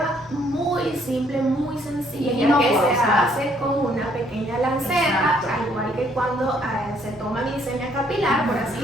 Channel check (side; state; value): both; normal; correlation 0.66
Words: muy simple, muy sencilla, que se hace con una pequeña lanceta, al igual que cuando se toma glicemia capilar, por así